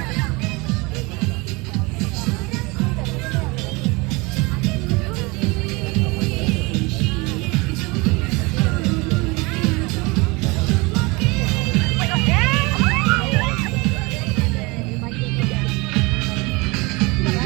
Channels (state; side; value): quieter; left; 25.7 dB